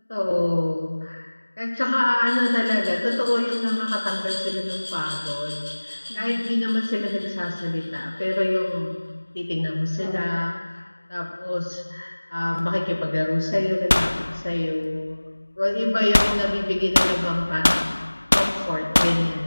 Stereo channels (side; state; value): both; inverted; correlation -1.00